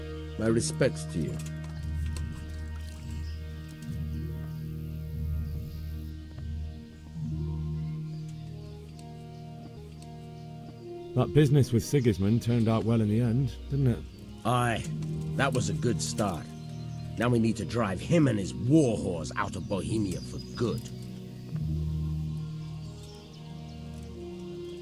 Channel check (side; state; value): both; identical; correlation 1.00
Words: My respects to you. That business with Sigismund turned out well in the end, didn't it? Aye, that was a good start. Now we need to drive him and his war whores out of Bohemia for good.